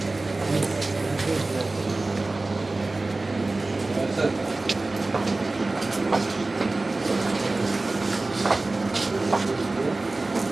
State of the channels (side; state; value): left; quieter; 3.2 dB